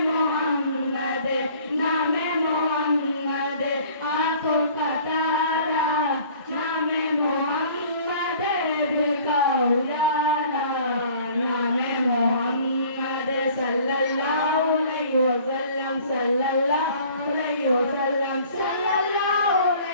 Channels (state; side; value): inverted; both; correlation -0.51